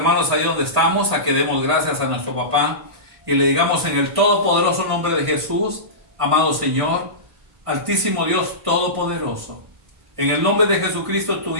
ahí donde estamos a que demos gracias a nuestro papá y le digamos en el todopoderoso nombre de Jesús: amado Señor, altísimo Dios todopoderoso, en el nombre de Jesucristo, tu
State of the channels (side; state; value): left; late; 1.5 ms